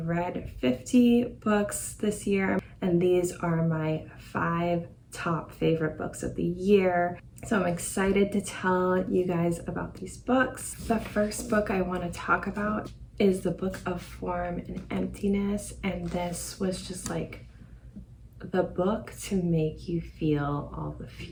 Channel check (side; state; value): both; identical; correlation 1.00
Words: read 50 books this year and these are my 5 top favorite books of the year. So I'm excited to tell you guys about these books. The first book I want to talk about is the Book of Form and Emptiness, and this was just like the book to make you feel all the